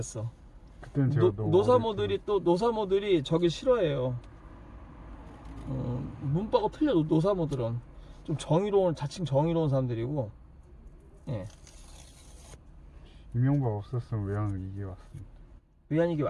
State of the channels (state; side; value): identical; both; correlation 1.00